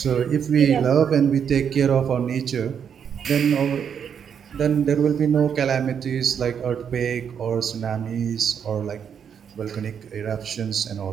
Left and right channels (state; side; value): quieter; left; 7.7 dB